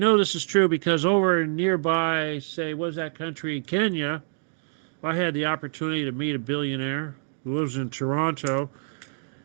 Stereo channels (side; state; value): left; silent; digital silence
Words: this is true because over nearby, say, what's that country, Kenya, I had the opportunity to meet a billionaire who lives in Toronto.